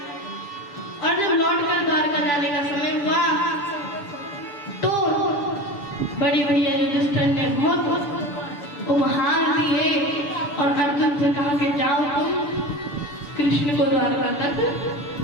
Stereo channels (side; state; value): right; late; 6.9 ms